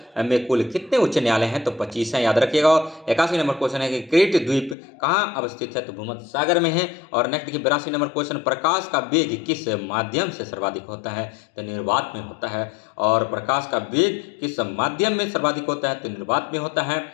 में कुल कितने उच्च न्यायालय हैं? तो 25 हैं, याद रखिएगा। 81 नंबर क्वेश्चन है कि क्रीट द्वीप कहाँ अवस्थित है? तो भूमध्य सागर में है। और नेक्स्ट देखिए 82 नंबर क्वेश्चन, प्रकाश का वेग किस माध्यम से सर्वाधिक होता है? तो निर्वात में होता है। और प्रकाश का वेग किस माध्यम में सर्वाधिक होता है? तो निर्वात में होता है।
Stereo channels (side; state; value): right; drops out; at 4.8 s